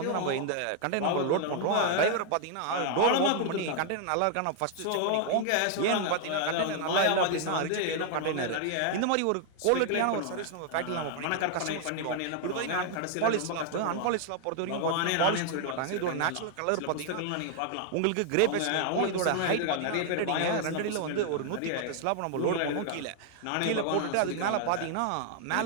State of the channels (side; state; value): both; different; correlation 0.00